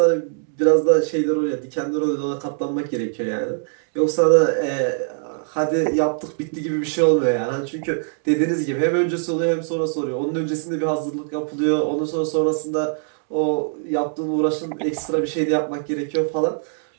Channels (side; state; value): left; silent; digital silence